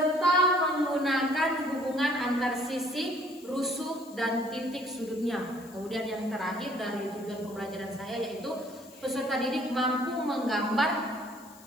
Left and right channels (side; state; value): left; noise; hiss, 22 dB below the sound